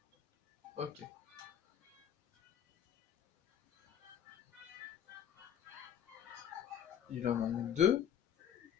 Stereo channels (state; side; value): quieter; right; 9.2 dB